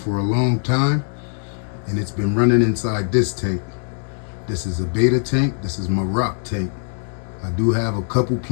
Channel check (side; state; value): right; silent; digital silence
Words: a long time, and it's been running inside this tank. This is a beta tank. This is my rock tank. I do have a couple